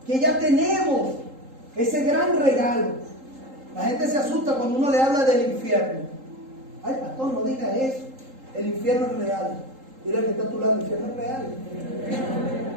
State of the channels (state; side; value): late; left; 3.8 ms